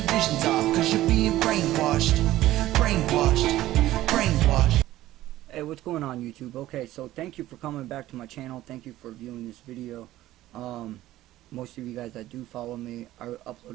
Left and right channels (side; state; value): left; quieter; 15.1 dB